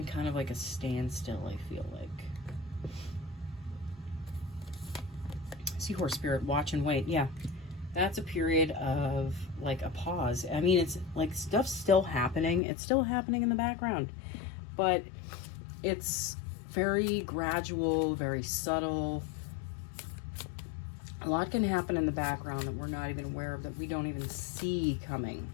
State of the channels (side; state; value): right; drops out; at 12.6 s